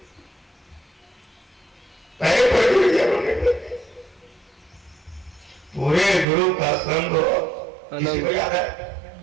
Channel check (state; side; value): drops out; left; at 6.2 s